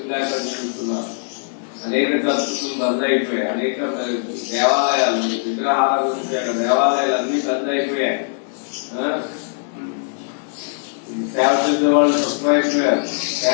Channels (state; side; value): silent; right; digital silence